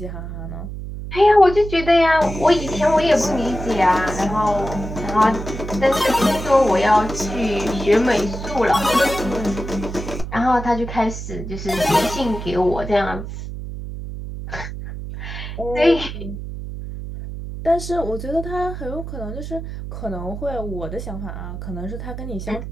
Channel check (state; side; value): noise; right; hum, 8 dB below the sound